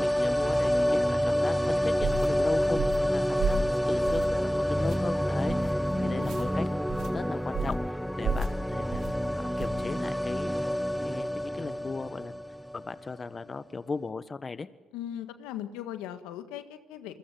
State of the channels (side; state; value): both; normal; correlation 0.95